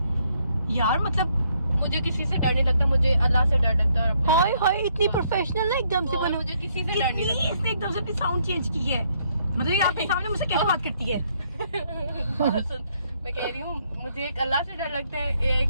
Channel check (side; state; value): both; inverted; correlation -0.71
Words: यार मतलब मुझे किसी से डर नहीं लगता, मुझे अल्लाह से डर लगता है। हाय हाय इतनी प्रोफेशनल ना एकदम से बनो। मुझे किसी से डर नहीं कितनी इसने एकदम से अपनी साउंड चेंज की है, मतलब ये आपके सामने मुझसे कैसे बात करती है? लगता। मैं कह रही हूँ मुझे एक अल्लाह से डर लगता है, एक